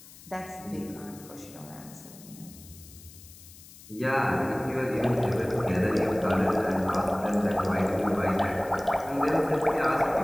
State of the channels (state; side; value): noise; left; hiss, 20 dB below the sound